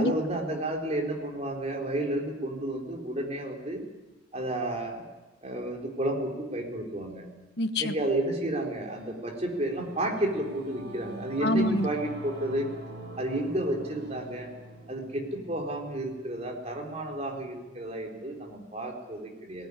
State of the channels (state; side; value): normal; both; correlation 0.42